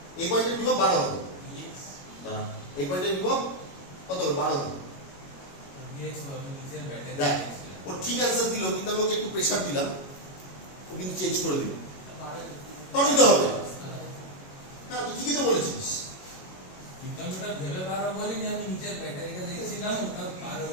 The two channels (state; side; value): late; right; 22 ms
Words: এই পয়েন্টের বিভব 12 হবে। এই পয়েন্টের বিভব কত হবে? 12 হবে। দেখ ও ঠিক অ্যান্সার দিল, কিন্তু আমি ওকে একটু প্রেসার দিলাম, ও কিন্তু চেঞ্জ করে দিল। তবে তো হবে, হ্যাঁ তুই ঠিকই তো বলেছিস।